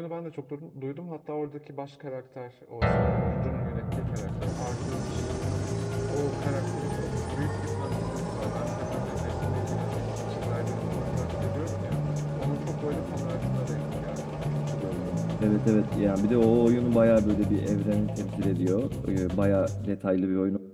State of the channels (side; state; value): both; identical; correlation 1.00